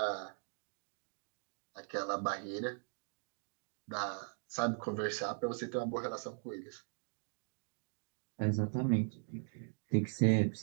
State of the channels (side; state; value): left; silent; 51 dB below the other